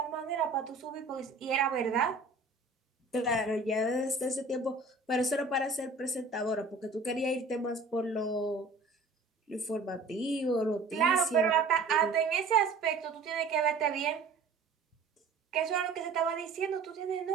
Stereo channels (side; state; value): left; quieter; 3.8 dB